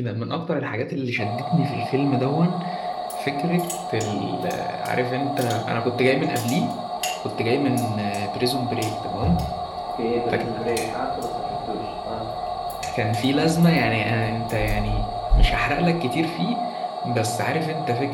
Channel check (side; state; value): both; identical; correlation 1.00